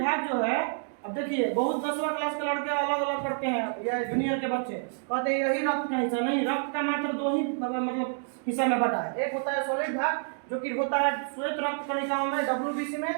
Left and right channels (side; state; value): left; silent; digital silence